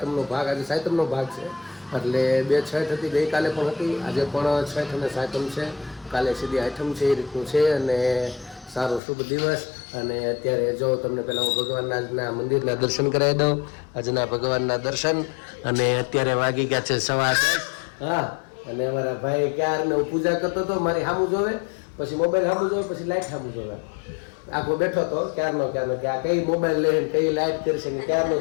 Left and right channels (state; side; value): drops out; right; at 9.0 s